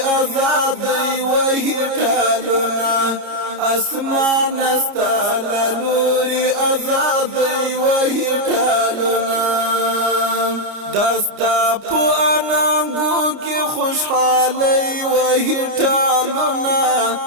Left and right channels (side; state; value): left; late; 29 ms